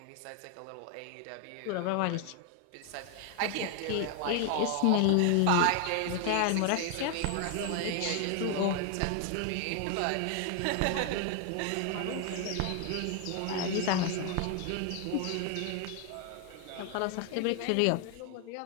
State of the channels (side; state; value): both; different; correlation 0.00